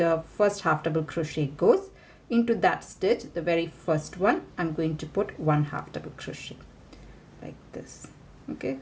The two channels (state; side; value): identical; both; correlation 1.00